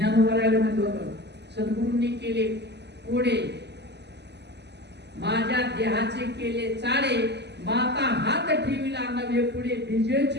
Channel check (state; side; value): late; left; 0.50 ms